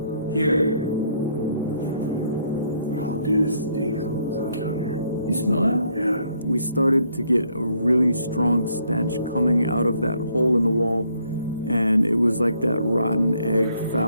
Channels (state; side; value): inverted; both; correlation -0.69